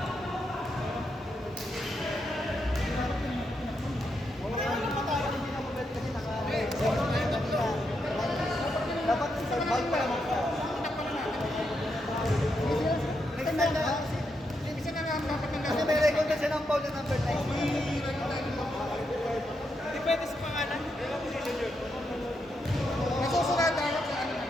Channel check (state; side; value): normal; both; correlation 0.82